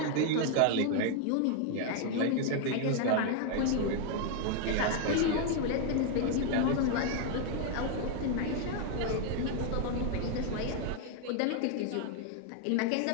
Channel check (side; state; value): both; different; correlation 0.00